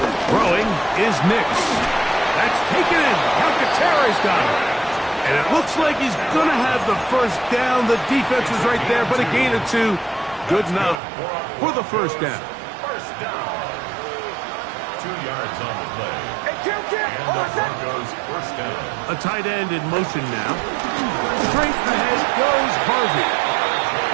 Throwing is Nix. That's taken in. Calcaterra's got it. And it looks like he's going to have the first down. The defense is right there, but a gain of 2. Good enough for the first down. First down. 2 yards on the play. And the Broncos first down. A tight end in motion now. Straight ahead goes Harvey.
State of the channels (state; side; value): drops out; left; at 11.0 s